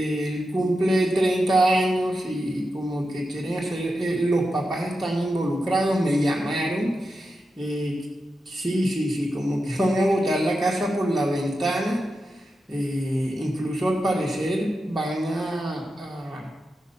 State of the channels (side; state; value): both; normal; correlation 0.89